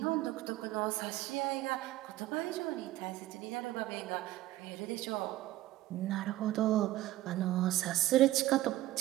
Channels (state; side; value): quieter; left; 15.6 dB